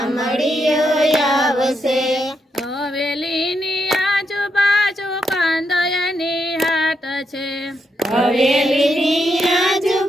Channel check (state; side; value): normal; both; correlation 0.81